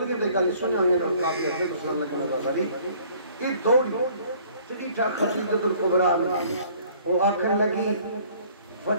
دیکھا لی سنے ہوئے اور کافی حضرت صلی اللہ علیہ وسلم یہ دوڑی چلی تھا خدیجۃ الکبریٰ وہ آکھن لگی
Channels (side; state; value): both; inverted; correlation -0.56